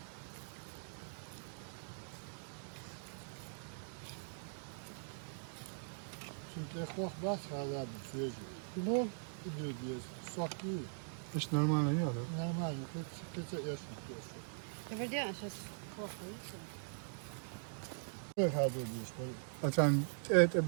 Çünkü korkmaz hala bir süreci. bu. Gidiyor diye sok değil. Hiç normal yok. Normal, keçe yaşmak diyorsun. Подожди, а сейчас плохо, видите? Böyle hadi diyorsun. Böyle. Açan et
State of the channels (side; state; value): left; silent; digital silence